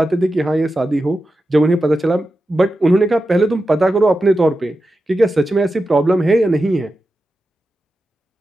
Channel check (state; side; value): normal; both; correlation 0.91